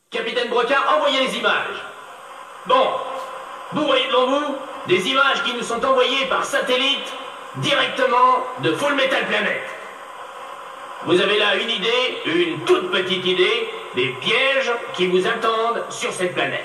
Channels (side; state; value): both; identical; correlation 1.00